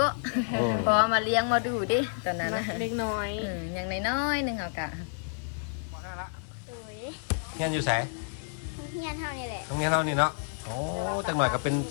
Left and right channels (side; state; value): right; silent; 58 dB below the other